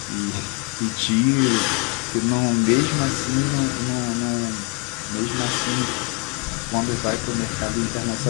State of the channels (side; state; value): right; quieter; 30.9 dB